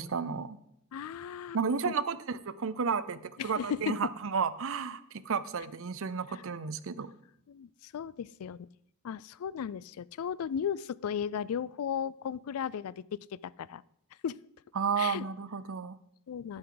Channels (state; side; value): normal; both; correlation -0.10